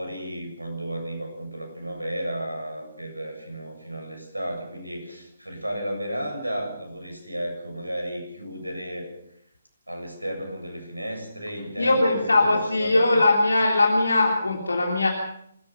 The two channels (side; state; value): both; inverted; correlation -0.88